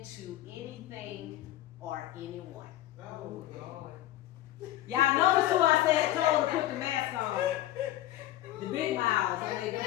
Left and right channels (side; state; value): right; quieter; 14.6 dB